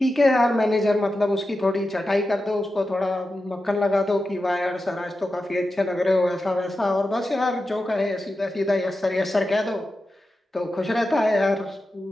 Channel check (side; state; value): both; normal; correlation 0.91